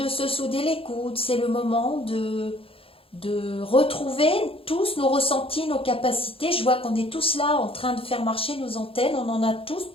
se souder les coudes, c'est le moment de retrouver tous nos ressentis, nos capacités. Je vois qu'on est tous là en train de faire marcher nos antennes, on en a tous,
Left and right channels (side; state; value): right; late; 0.27 ms